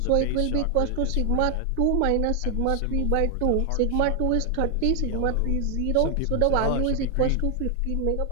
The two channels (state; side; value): different; both; correlation 0.00